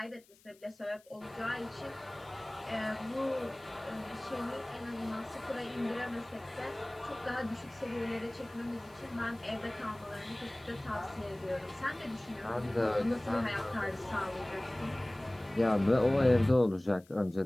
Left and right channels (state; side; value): noise; left; hiss, 28 dB below the sound